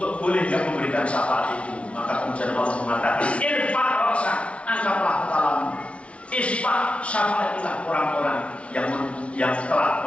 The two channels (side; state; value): right; late; 0.062 ms